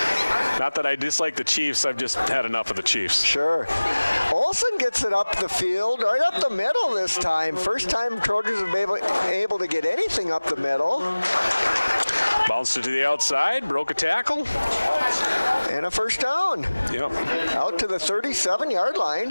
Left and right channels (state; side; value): inverted; both; correlation -1.00